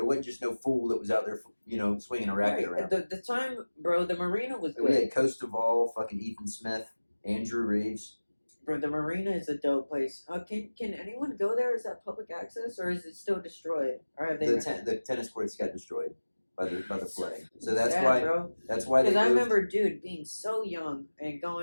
It wasn't just no fool that was out there, swinging a racket around. The time, bro, the marina was We good. had Costaval, fucking Ethan Smith, Andrew Reeves. Bro, the marina is a dope place. Can anyone go there? Is that public access or is it still destroyed? Or have they? The tennis courts got destroyed by the flooding. So that's Sad, why bro. that's why they Because I moved. remember, dude, being so young and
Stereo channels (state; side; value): inverted; both; correlation -1.00